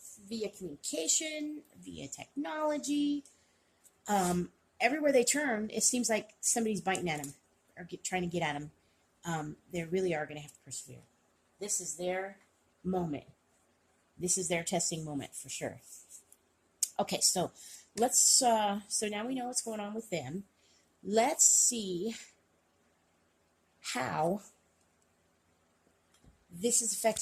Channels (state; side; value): identical; both; correlation 1.00